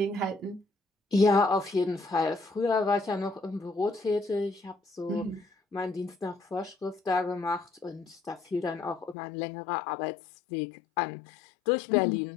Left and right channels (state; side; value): drops out; right; at 9.2 s